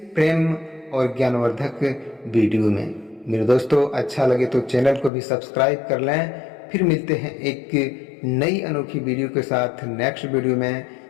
प्रेम और ज्ञानवर्धक वीडियो में। मेरे दोस्तों, अच्छा लगे तो चैनल को भी सब्सक्राइब कर लें। फिर मिलते हैं एक नई अनोखी वीडियो के साथ नेक्स्ट वीडियो में।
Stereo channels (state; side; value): drops out; right; at 5.1 s